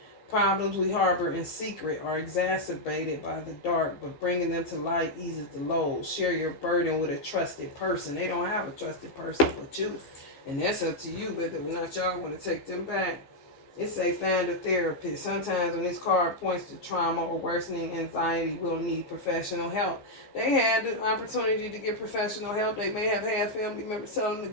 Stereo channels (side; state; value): right; late; 15 ms